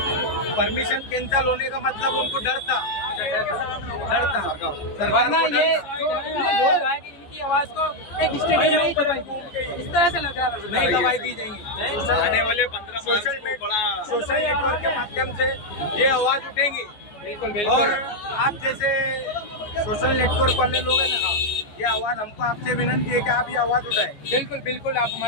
परमिशन कैंसिल होने का मतलब उनको डर था। सरकार वरना को ये डर था। जो इतने लोग आए कि इनकी आवाज को एक स्टेडियम में ही दबाई, इस तरह से लग रहा था। नहीं दवाई दी जाएंगी। आने वाले 15 मार्च को बड़ा सोशल नेटवर्क के माध्यम से ये आवाज उठेंगी। बिल्कुल और बिल्कुल। आप जैसे सोशल नेटवर्क वाले लोग हैं ना, ये आवाज हमको आपसे विनंती है कि आप ये आवाज उठाएं। बिल्कुल बिल्कुल, आप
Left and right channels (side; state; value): right; late; 14 ms